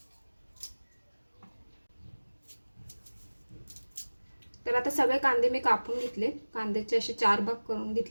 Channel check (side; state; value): both; inverted; correlation -1.00